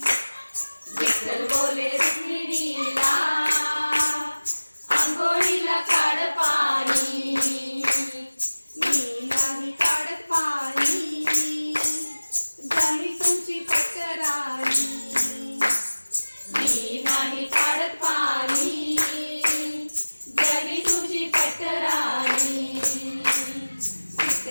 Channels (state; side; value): inverted; both; correlation -1.00